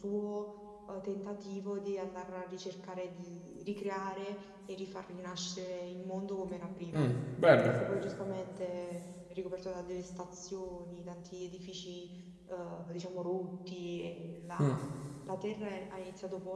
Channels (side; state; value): both; identical; correlation 1.00